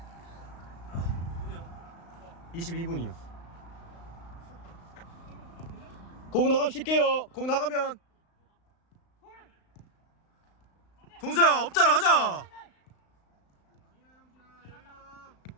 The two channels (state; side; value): late; right; 35 ms